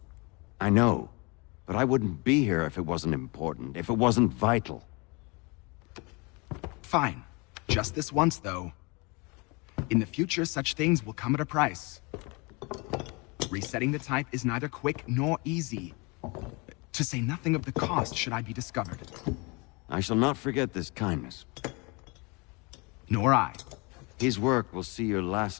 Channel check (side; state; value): right; quieter; 28.7 dB